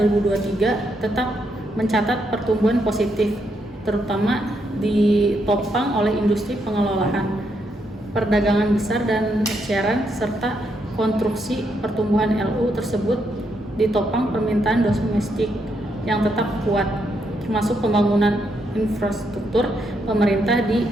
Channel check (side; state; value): both; normal; correlation 0.78